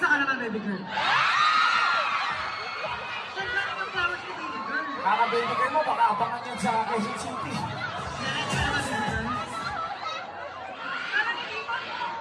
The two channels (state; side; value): identical; both; correlation 1.00